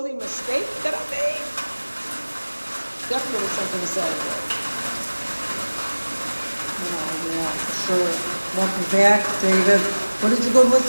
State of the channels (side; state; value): both; inverted; correlation -1.00